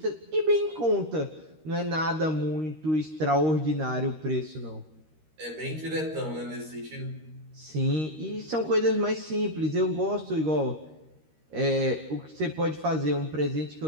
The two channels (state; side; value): late; left; 13 ms